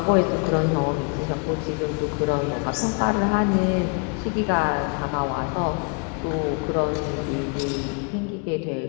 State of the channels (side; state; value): right; quieter; 36.5 dB